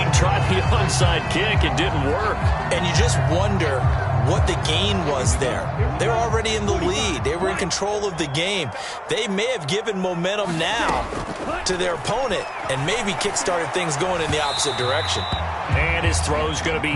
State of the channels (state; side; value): identical; both; correlation 1.00